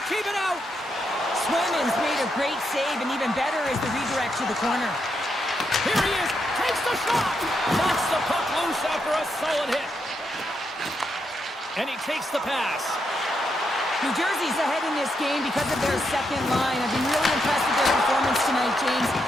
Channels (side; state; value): both; normal; correlation 0.81